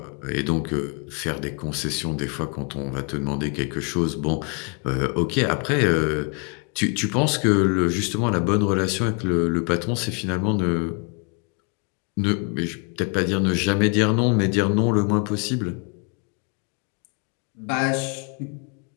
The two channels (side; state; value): right; quieter; 36.4 dB